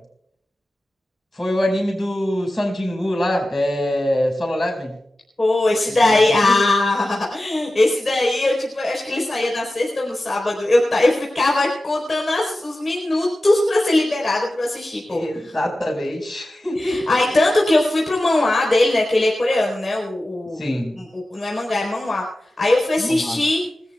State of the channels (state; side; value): normal; both; correlation 0.94